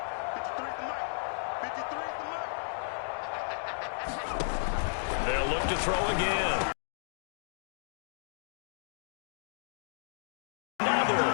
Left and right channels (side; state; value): right; silent; digital silence